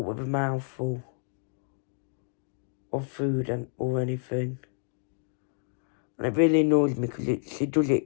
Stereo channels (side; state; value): right; silent; digital silence